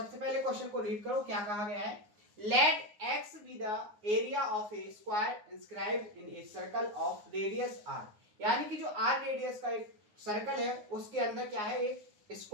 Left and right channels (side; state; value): left; late; 9.6 ms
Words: पहले क्वेश्चन को रीड करो। क्या कहा गया है? Let X be the area of a square inscribed in a circle of radius R. यानी कि जो आर रेडियस का एक सर्कल है उसके अंदर क्या है, एक